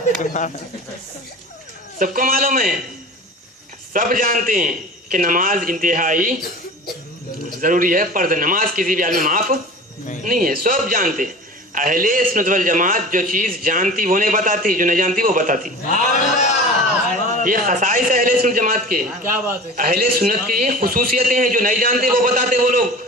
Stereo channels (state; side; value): normal; both; correlation 0.38